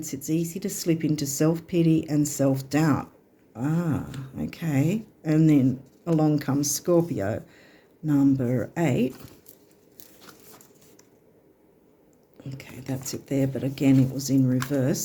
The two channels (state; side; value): identical; both; correlation 1.00